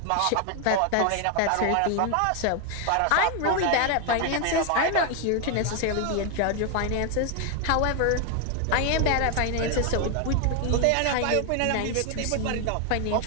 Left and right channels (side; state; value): both; different; correlation 0.01